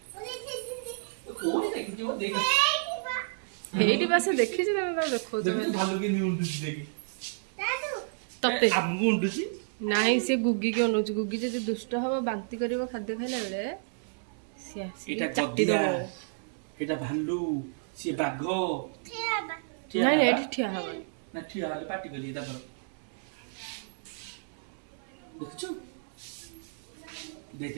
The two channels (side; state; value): left; silent; 57 dB below the other